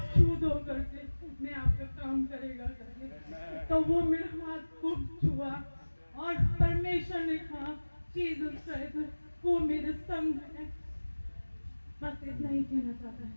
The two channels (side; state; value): both; inverted; correlation -1.00